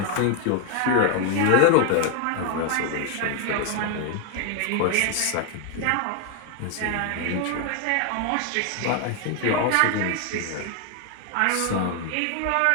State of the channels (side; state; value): both; different; correlation 0.01